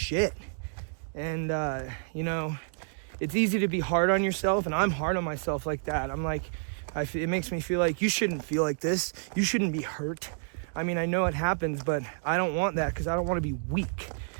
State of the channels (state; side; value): silent; left; 58 dB below the other